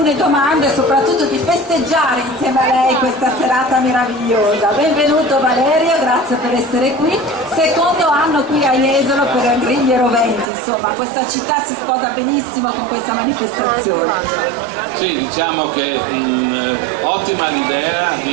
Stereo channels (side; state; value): left; drops out; at 10.5 s